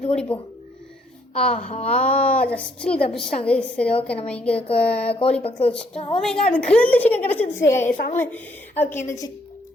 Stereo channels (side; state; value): both; normal; correlation 0.69